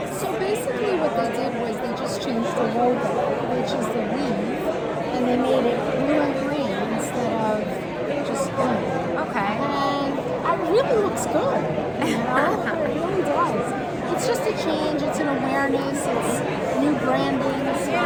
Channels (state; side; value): identical; both; correlation 1.00